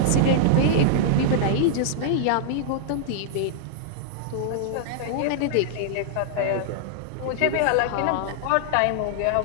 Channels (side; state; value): both; different; correlation -0.01